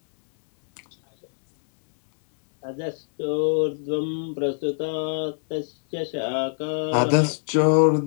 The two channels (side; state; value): right; silent; digital silence